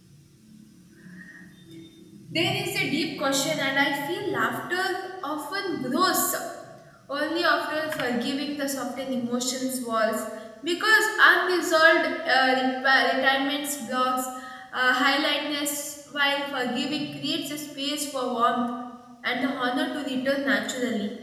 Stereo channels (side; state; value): both; identical; correlation 1.00